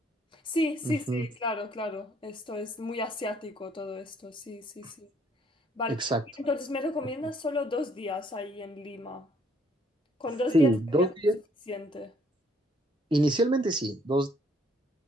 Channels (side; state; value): both; normal; correlation 0.65